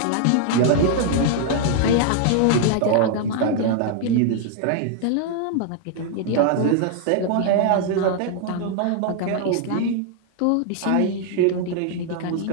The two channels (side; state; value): both; different; correlation 0.00